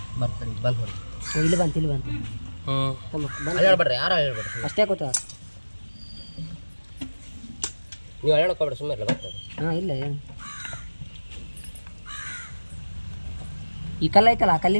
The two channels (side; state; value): both; inverted; correlation -1.00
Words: ಬರ್ತಾರೆ ಬಂದು ಹೊಡಿ ಇಲ್ಲಿ ಬಂತು ಹೇಳ್ಬೇಡ್ರಿ ಯಾರು ಹೇಳ್ಬೇಡ್ರಿ ಅಷ್ಟೇ ಗೊತ್ತ ನೀವು ಹೇಳೋಕೋಬೇಡ್ರಿ ಸುಮ್ಮನೆ ಇಲ್ಲ ಬರ್ತಾರೆ ಹಾಂ ಇಲ್ಲ ಏನು ಈ ಕಲ್ಲು ಐತಲ್ಲ ಆ